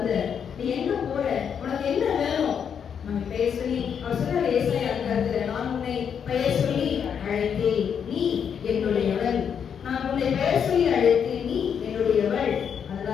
நீ எங்க போற, உனக்கு என்ன வேணும், நம்ம பெயர் சொல்லி அவர் சொல்றாரு ஏசாயா அதிகாரத்துல, நான் உன்னை பெயர் சொல்லி அழைத்தேன், நீ என்னுடையவள், நான் உன்னை பெயர் சொல்லி அழைத்தேன், நீ என்னுடையவள்.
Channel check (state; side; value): quieter; right; 7.6 dB